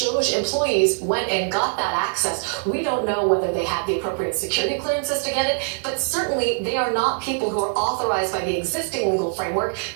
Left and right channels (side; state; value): left; silent; digital silence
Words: employees went and got that access, we don't know whether they had the appropriate security clearances to get it, but certainly they are not people who are authorized by the existing legal framework